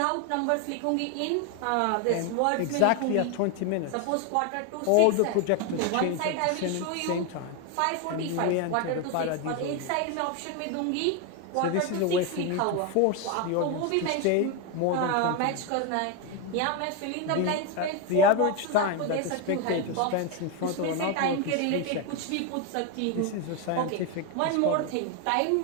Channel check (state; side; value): different; both; correlation 0.02